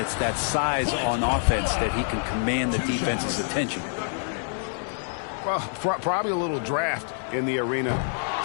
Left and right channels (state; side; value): silent; right; digital silence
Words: it's that size on offense that he can command the defense's attention. Well, probably a little draft in the arena